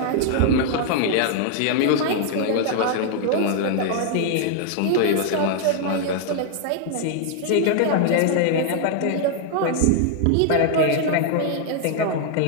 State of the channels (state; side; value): different; both; correlation 0.00